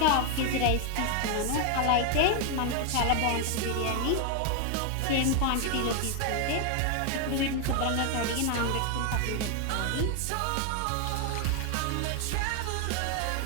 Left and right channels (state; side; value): different; both; correlation 0.01